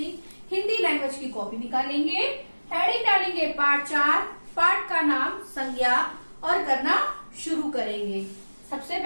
हिंदी लैंग्वेज की कॉपी निकालेंगे, हेडिंग डालेंगे पाठ 4, पाठ का नाम संज्ञा और करना शुरू करेंगे। सबसे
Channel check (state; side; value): inverted; both; correlation -1.00